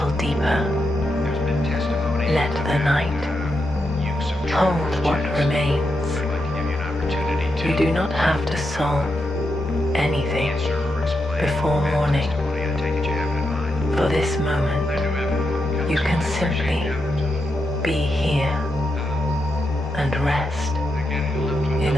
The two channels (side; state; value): both; normal; correlation 0.85